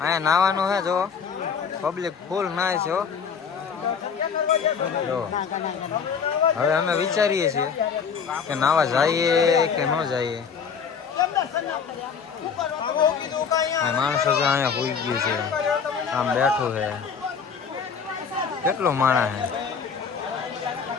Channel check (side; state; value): right; quieter; 6.4 dB